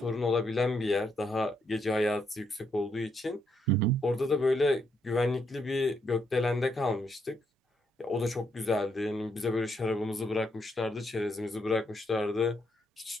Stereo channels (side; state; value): both; normal; correlation 0.76